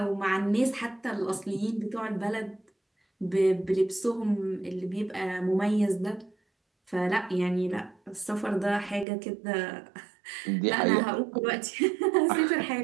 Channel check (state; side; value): drops out; left; at 9.1 s